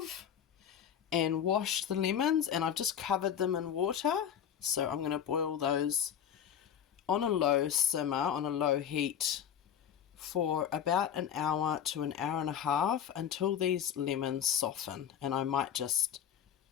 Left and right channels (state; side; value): quieter; right; 9.1 dB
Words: and washed the lemons, and I've just covered them in water. So I'm going to boil those on a low simmer, on a low heat, for about an hour to an hour and a half until these lemons soften. And I might just